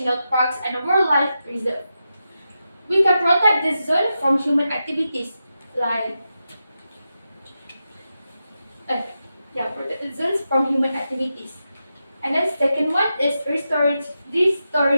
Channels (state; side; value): inverted; both; correlation -0.89